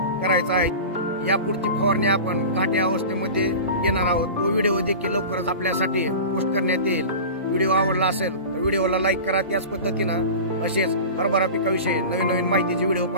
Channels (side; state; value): both; inverted; correlation -0.33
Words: करायचा आहे। यापुढची फवारणी आपण घाटे अवस्थेमध्ये घेणार आहोत। तो व्हिडिओ देखील लवकरच आपल्यासाठी पोस्ट करण्यात येईल। व्हिडिओ आवडला असेल तर व्हिडिओला लाईक करा। त्याच पद्धतीनं असेच हरभरा पिकाविषयी नवीन माहितीचे व्हिडिओ